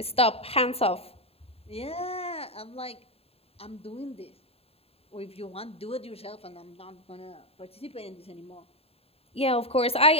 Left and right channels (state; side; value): late; right; 0.29 ms